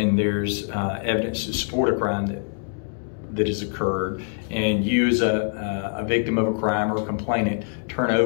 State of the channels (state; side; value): silent; right; digital silence